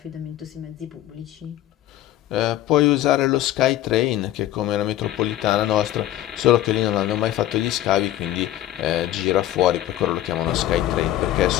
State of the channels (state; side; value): quieter; right; 13.3 dB